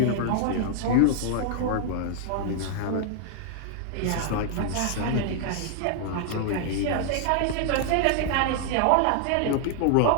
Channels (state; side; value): different; both; correlation 0.00